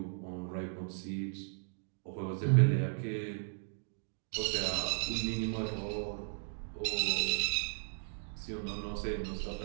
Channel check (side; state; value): left; silent; digital silence